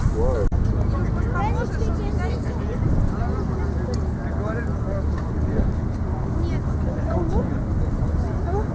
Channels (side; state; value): both; identical; correlation 1.00